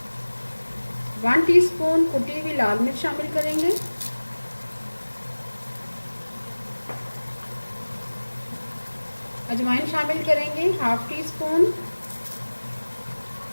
1 टीस्पून कुटी हुई लाल मिर्च शामिल करेंगे। अजवाइन शामिल करेंगे 1/2 टीस्पून।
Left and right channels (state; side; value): inverted; both; correlation -1.00